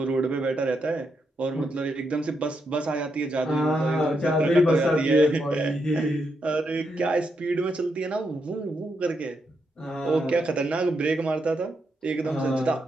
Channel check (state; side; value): normal; both; correlation 0.81